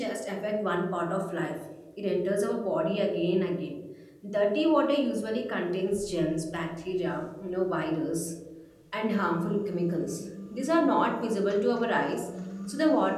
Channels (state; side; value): identical; both; correlation 1.00